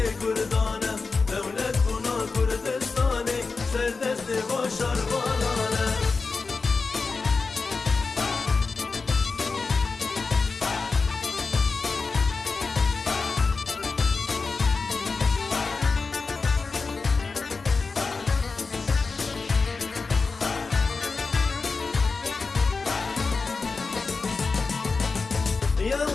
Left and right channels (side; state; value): right; quieter; 4.3 dB